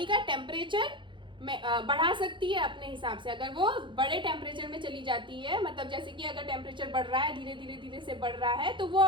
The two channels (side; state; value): left; late; 0.23 ms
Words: का टेम्परेचर में बढ़ा सकती है अपने हिसाब से। अगर वो बड़े टेम्परेचर में चली जाती है, मतलब जैसे कि अगर टेम्परेचर बढ़ रहा है, धीरे धीरे धीरे से बढ़ रहा है, तो वो